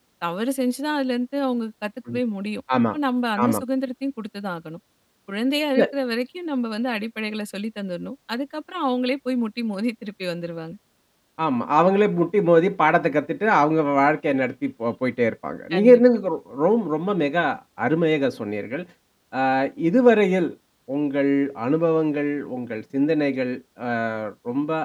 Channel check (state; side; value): identical; both; correlation 1.00